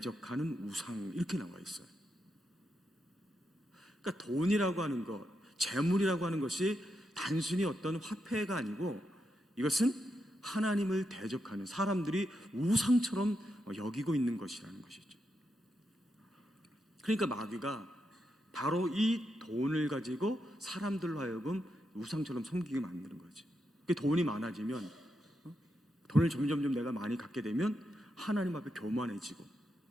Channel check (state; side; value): normal; both; correlation 0.84